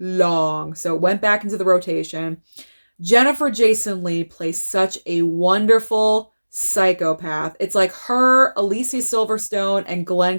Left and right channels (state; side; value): inverted; both; correlation -1.00